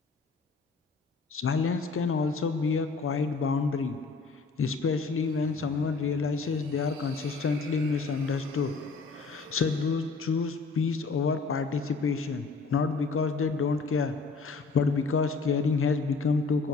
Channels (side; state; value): right; quieter; 4.5 dB